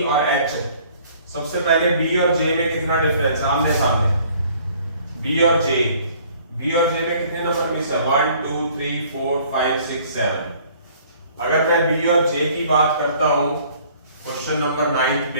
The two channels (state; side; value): inverted; both; correlation -0.56